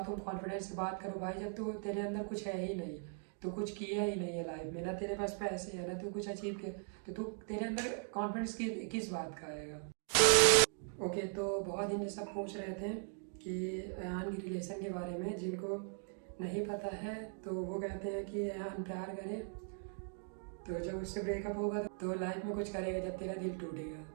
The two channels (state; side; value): silent; left; 52 dB below the other